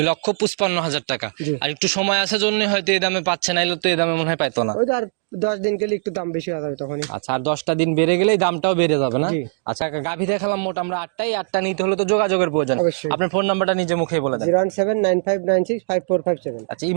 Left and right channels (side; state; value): left; silent; digital silence